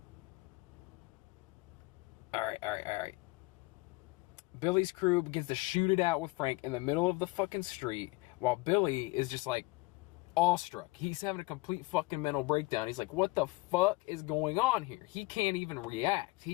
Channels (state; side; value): quieter; right; 23.5 dB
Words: Alright. Billy's crew begins to shoot it out with Frank in the middle of the fucking street, while Billy is just like awestruck. He's having a complete fucking mental breakdown. He's like, what the fuck is going on here? He can't even react.